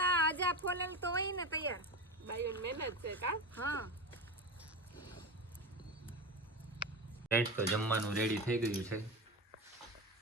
આ 1000 ફોલેલું તો હોય ને તૈયાર. બાયુન મહેનત છે કા. હા ફ્રેન્ડ્સ તો જમવાનું રેડી થઈ ગયું છે.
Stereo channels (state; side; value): normal; both; correlation 0.23